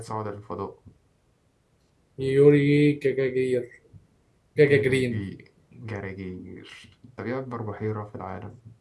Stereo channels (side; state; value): both; identical; correlation 1.00